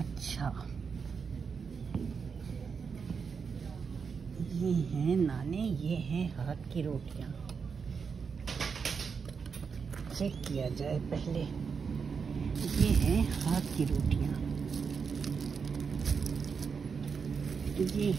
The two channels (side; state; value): left; quieter; 5.8 dB